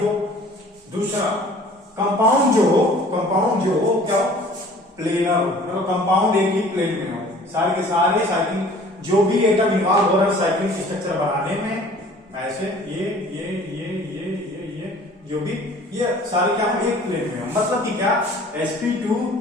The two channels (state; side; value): normal; both; correlation 0.50